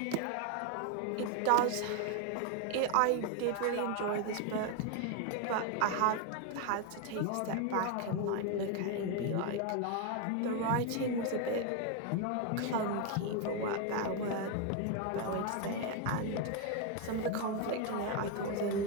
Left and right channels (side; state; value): both; different; correlation 0.01